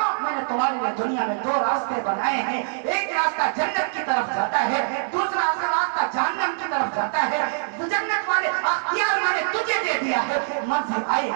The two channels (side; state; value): left; silent; digital silence